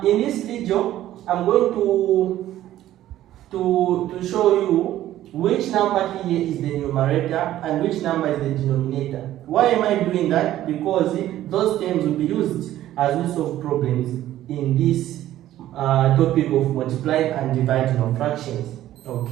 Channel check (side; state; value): left; quieter; 13.4 dB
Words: in this video, I'm going to show you which number here is the numerator and which number is the denominator. Why am I doing that? Because those terms will be used as we solve problems in this topic of multiplying and dividing of fractions.